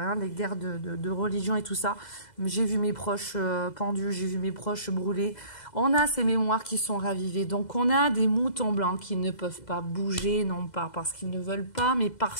les guerres de religion et tout ça. J'ai vu mes proches pendus, j'ai vu mes proches brûlés. On a ces mémoires qui sont ravivées. Donc on a des moutons blancs qui ne peuvent pas bouger, non pas parce qu'ils ne veulent pas, mais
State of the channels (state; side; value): late; right; 2.0 ms